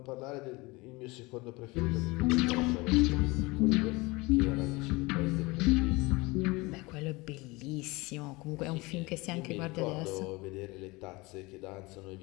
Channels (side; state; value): right; quieter; 23.7 dB